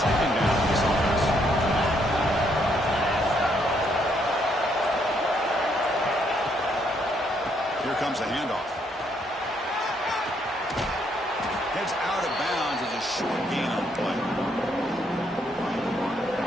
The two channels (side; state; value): both; normal; correlation 0.72